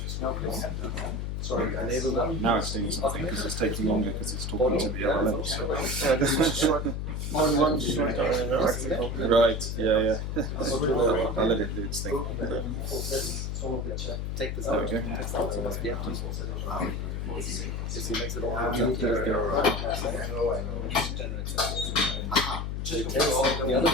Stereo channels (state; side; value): noise; left; hum, 3 dB below the sound